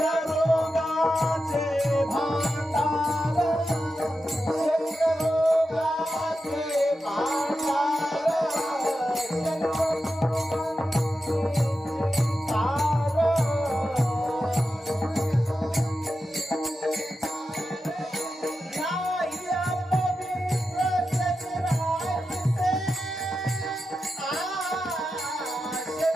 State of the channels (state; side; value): normal; both; correlation 0.90